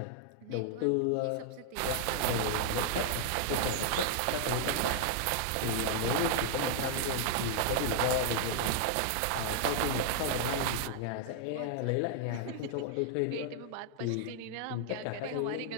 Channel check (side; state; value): both; different; correlation -0.01